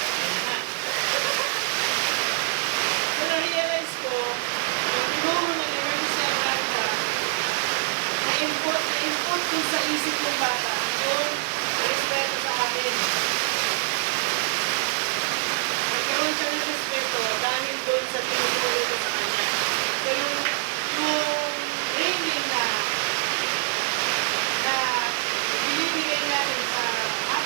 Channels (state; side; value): silent; left; digital silence